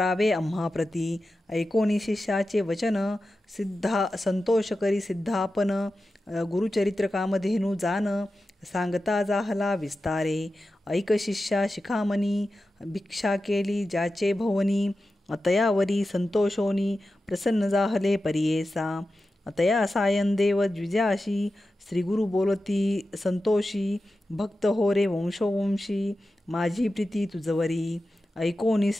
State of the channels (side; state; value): both; normal; correlation 0.92